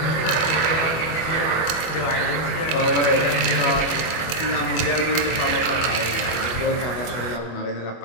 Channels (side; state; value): right; late; 25 ms